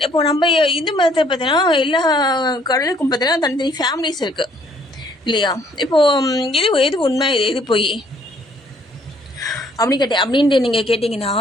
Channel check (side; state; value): both; normal; correlation 0.63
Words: இப்போது நம்ம இந்து மதத்தில் பார்த்தீங்கன்னா எல்லா கடவுளுக்கும் பார்த்தீங்கன்னா தனித்தனி ஃபேமிலிஸ் இருக்குது இல்லையா? இப்போது எது உண்மை, எது பொய் அப்படின்ட்டு நீங்கள் கேட்டிங்கன்னா